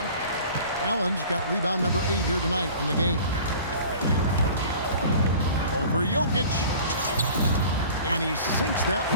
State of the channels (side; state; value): both; inverted; correlation -0.44